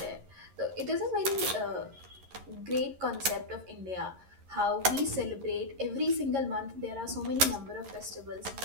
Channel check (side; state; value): left; late; 11 ms